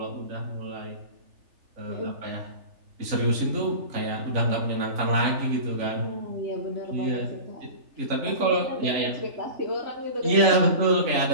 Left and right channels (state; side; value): late; left; 3.4 ms